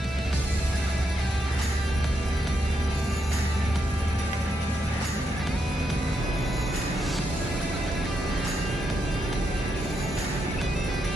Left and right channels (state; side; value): normal; both; correlation 0.81